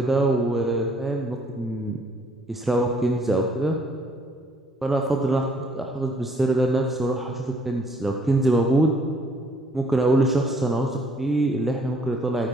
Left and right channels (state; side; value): normal; both; correlation 0.63